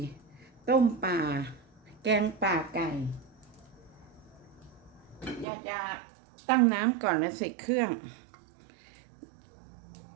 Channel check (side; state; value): left; drops out; at 5.5 s